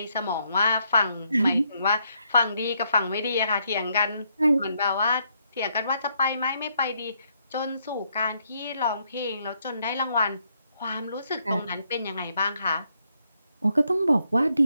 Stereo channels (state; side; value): inverted; both; correlation -0.75